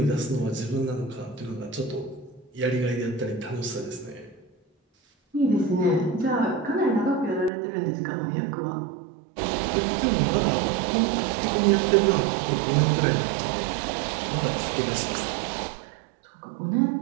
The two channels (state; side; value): drops out; left; at 7.5 s